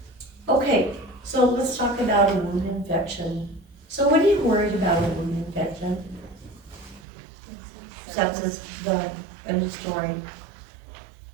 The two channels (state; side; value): drops out; left; at 7.0 s